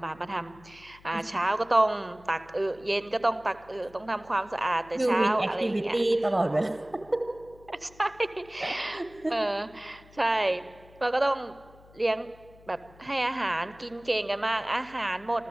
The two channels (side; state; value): left; noise; hum, 24 dB below the sound